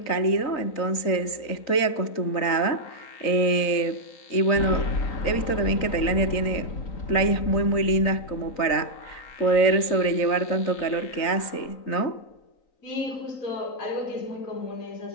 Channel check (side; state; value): right; late; 3.9 ms